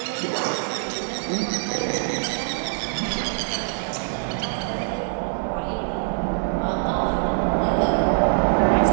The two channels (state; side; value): silent; left; digital silence